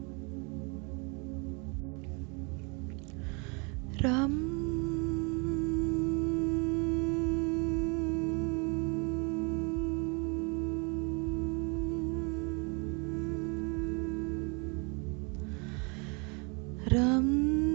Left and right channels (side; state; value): left; quieter; 32.5 dB